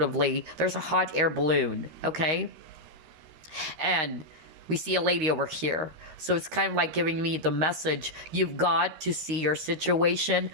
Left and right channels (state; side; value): late; left; 13 ms